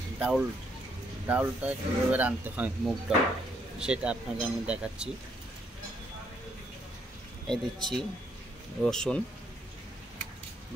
ডাউলটা কীভাবে রাঁধতে হয়, মুগ ডাল, সেটা আপনাকে আমি দেখাচ্ছি। এই দিচ্ছি রসুন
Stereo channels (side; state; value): both; normal; correlation 0.72